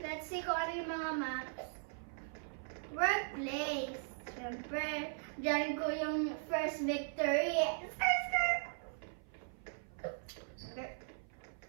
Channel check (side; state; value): left; silent; 52 dB below the other